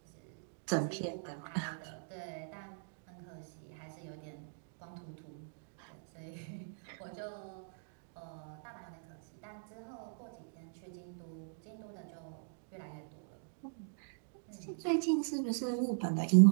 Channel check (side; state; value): left; silent; digital silence